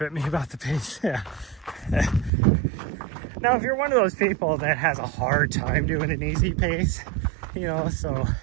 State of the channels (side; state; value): left; drops out; at 2.3 s